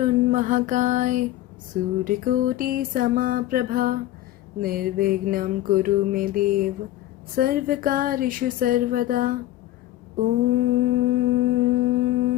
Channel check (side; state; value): right; quieter; 14.7 dB